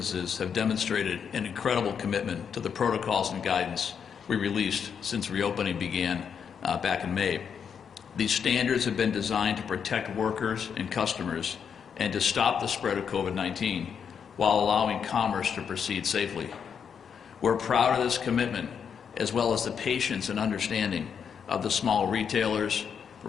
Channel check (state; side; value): quieter; right; 7.2 dB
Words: have demonstrated an incredible commitment to the protocols and guidance we released since reopening began back in May. These standards have been designed to protect workers and customers and to stop the spread of COVID-19 while allowing commerce to proceed safely. We're proud of this commitment, as well as the patience and understanding of the small retailers,